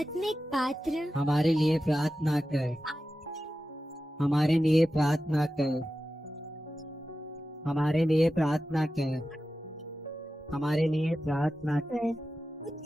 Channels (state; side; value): normal; both; correlation 0.93